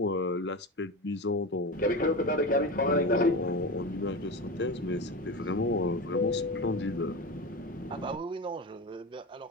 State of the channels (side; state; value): both; normal; correlation 0.24